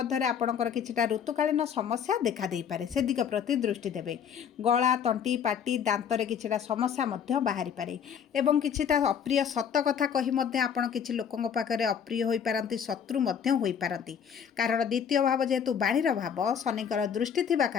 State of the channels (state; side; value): quieter; right; 7.8 dB